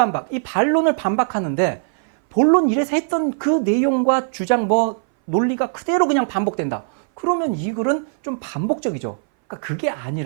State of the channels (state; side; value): silent; left; 60 dB below the other